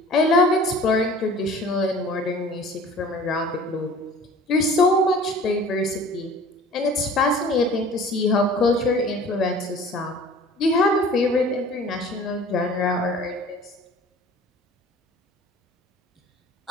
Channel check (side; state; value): both; normal; correlation 0.46